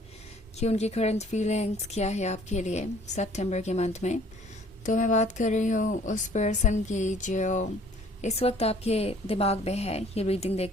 कि उनकी करंट फीलिंग्स क्या है आपके लिए सितंबर के मंथ में। तो मैं बात कर रही हूँ उस पर्सन की जो इस वक्त आपके दिमाग में है ये रीडिंग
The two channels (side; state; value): both; normal; correlation 0.55